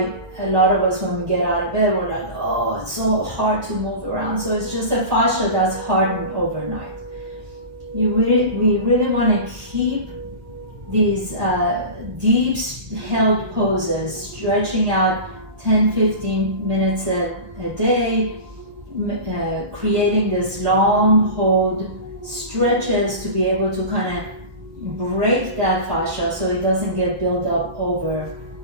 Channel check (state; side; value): late; left; 1.4 ms